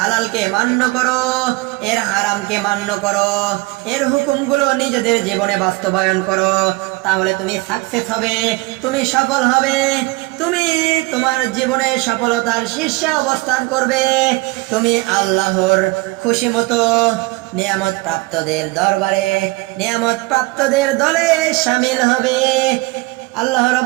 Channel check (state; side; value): quieter; left; 23.4 dB